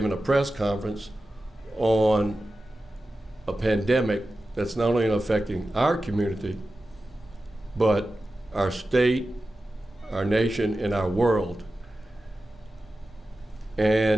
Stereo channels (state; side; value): normal; both; correlation 0.93